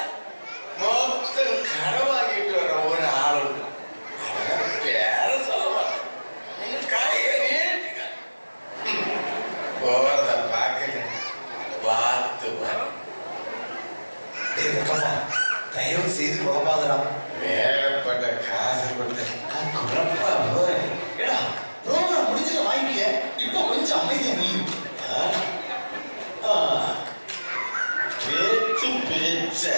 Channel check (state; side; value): inverted; both; correlation -1.00